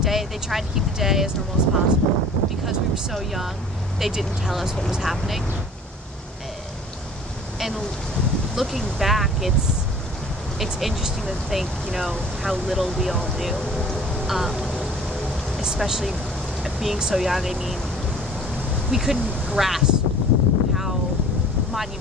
They tried to keep the day as normal as possible. Because we were so young, they didn't tell us what was happening. And looking back, it's interesting to think, you know, how little we all knew. Especially being so young. I mean, we couldn't grasp how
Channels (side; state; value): both; normal; correlation 0.48